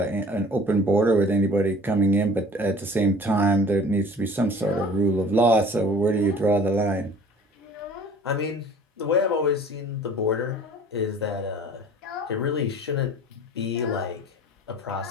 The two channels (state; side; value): normal; both; correlation 0.47